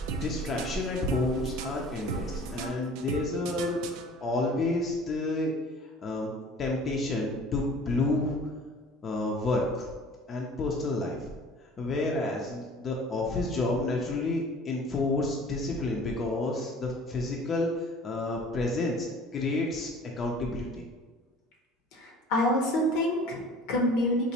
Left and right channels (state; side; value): normal; both; correlation 0.47